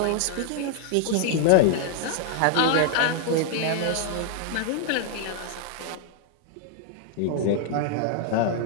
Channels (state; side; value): different; both; correlation 0.00